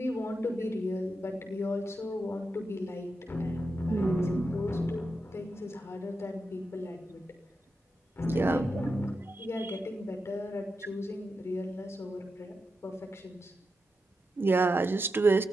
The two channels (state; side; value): normal; both; correlation 0.88